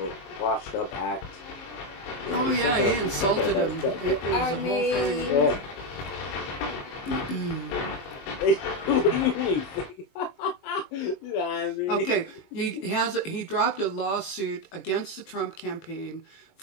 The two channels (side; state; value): right; late; 21 ms